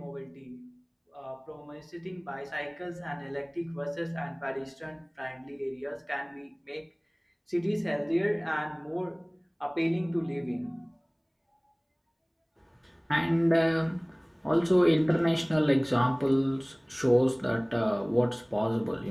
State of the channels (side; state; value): both; identical; correlation 1.00